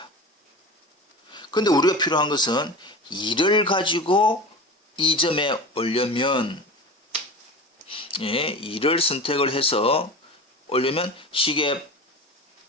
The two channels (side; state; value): both; normal; correlation 0.31